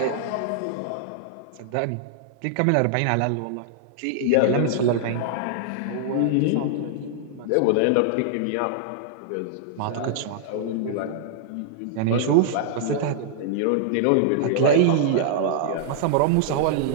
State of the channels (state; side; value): different; both; correlation -0.01